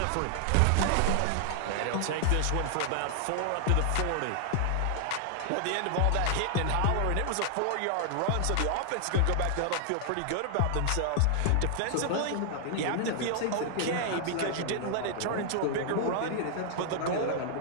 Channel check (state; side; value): different; both; correlation 0.00